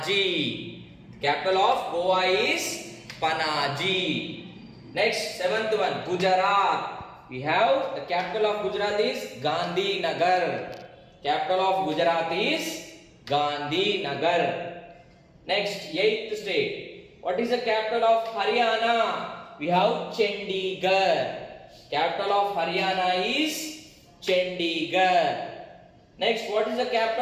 Capital of Goa is Panaji. Next, seventh one, Gujarat. We have the capital of Gujarat is Gandhinagar. Capital of Gujarat is Gandhinagar. Next, eighth state. What is the capital of Haryana? We have Chandigarh. Capital of Haryana is Chandigarh. Next, what is the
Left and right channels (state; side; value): identical; both; correlation 1.00